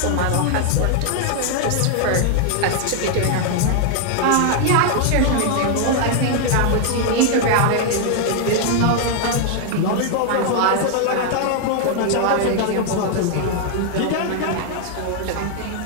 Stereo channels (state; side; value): different; both; correlation 0.00